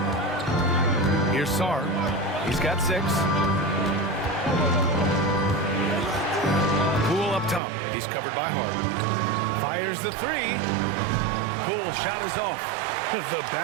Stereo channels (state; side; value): drops out; left; at 7.6 s